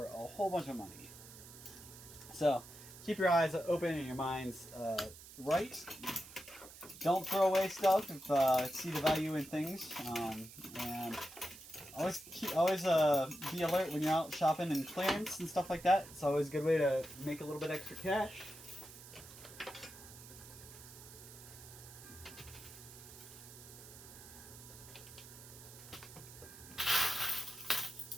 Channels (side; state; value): right; noise; hiss, 17 dB below the sound